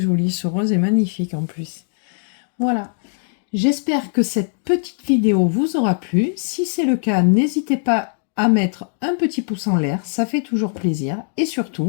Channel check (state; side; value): silent; right; 62 dB below the other